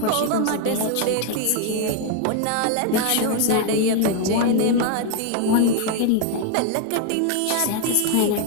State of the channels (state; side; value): different; both; correlation 0.01